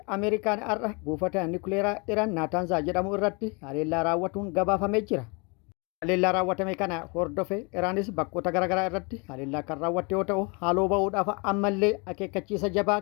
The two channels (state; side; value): quieter; right; 31.0 dB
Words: Ameerikaan har'a buufata nukleeraa Iraan Naataanzaa jedhamu irratti haleellaa raawwatuun gabaafamee jira. Haleellaa raawwatame kana hordofe Iraanis bakkoota garaagaraa irratti haleellaa kan raawwatte yoo ta'u haaloo bahuudhaaf ammallee akeekkachiisa jabaa